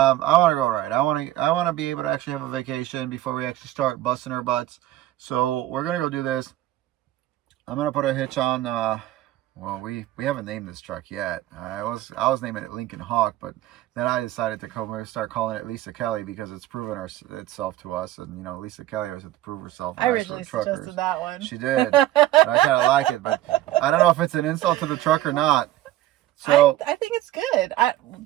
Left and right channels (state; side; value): quieter; left; 14.7 dB